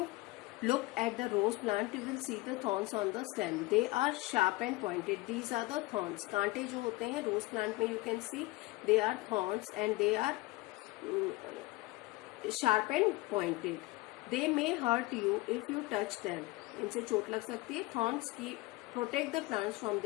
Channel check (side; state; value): right; quieter; 21.2 dB